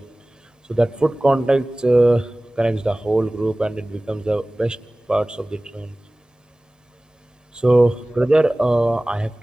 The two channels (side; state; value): both; normal; correlation 0.98